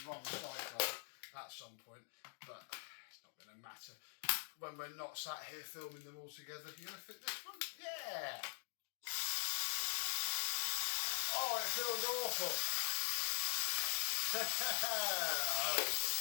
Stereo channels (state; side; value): silent; right; digital silence